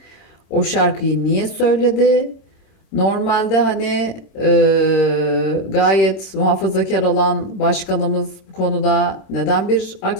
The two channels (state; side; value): late; right; 26 ms